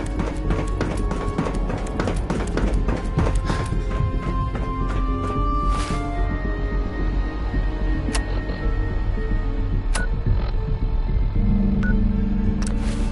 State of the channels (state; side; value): identical; both; correlation 1.00